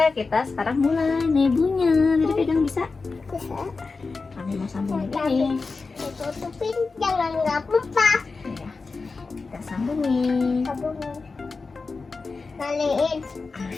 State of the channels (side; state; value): right; quieter; 4.2 dB